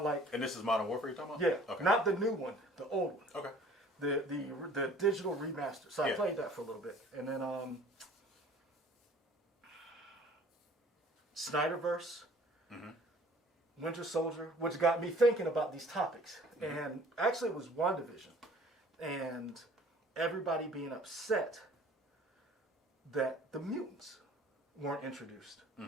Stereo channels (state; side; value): normal; both; correlation 0.51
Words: like. And this is Modern Warfare you're talking about? Yeah. Okay. Not the new one, the old one. Okay. The digital remaster. So I played that for a little bit, and then Snyderverse, Winter Soldier, which got me thinking about these topics. And actually, it was WandaVision, and everybody being upset that the mutants weren't introduced.